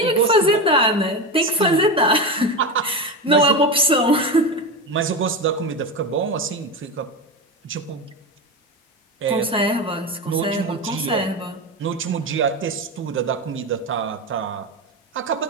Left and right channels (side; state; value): both; normal; correlation 0.19